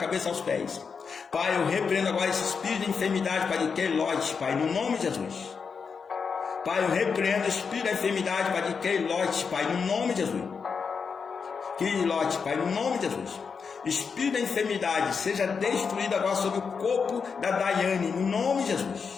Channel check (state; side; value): quieter; right; 5.7 dB